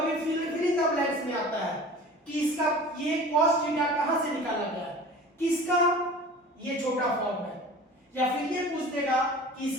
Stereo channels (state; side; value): normal; both; correlation 0.41